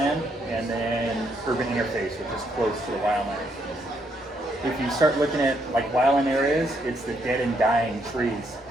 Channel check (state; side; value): normal; both; correlation 0.74